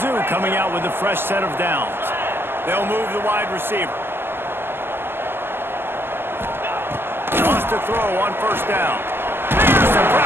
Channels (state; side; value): late; left; 0.10 ms